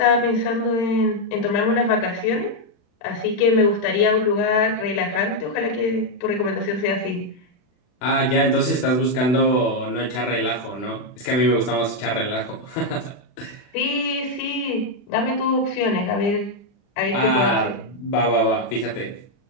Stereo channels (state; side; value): late; right; 40 ms